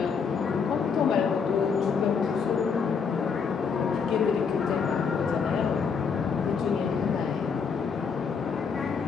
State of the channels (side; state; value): right; quieter; 6.0 dB